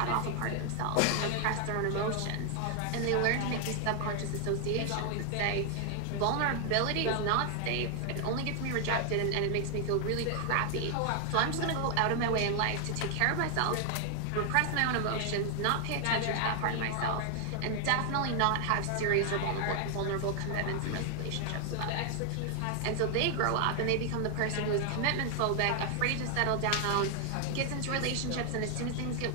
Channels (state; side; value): different; both; correlation 0.00